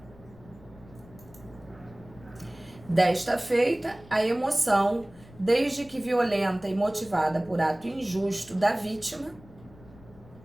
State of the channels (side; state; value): left; noise; rumble, 22 dB below the sound